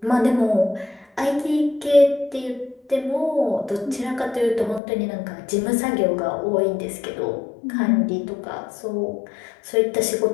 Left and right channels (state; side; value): drops out; right; at 4.8 s